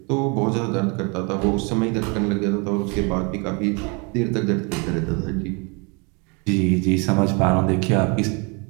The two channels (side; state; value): left; quieter; 31.7 dB